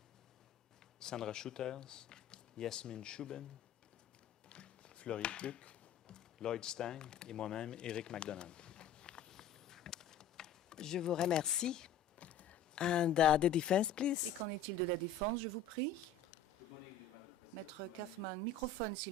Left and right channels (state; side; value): quieter; right; 6.1 dB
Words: Sandra Shooters, Yasmine Chouben, Florie Pluck, Lloyd Stang et moi-même, Éric McDonald. Je vous remercie. And the defense, please. Et qu'en est-il de la défense, je vous prie? Maître Kaufman, microphone,